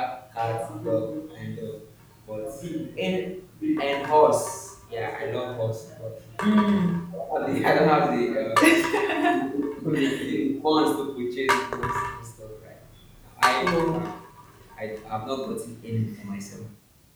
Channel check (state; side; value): identical; both; correlation 1.00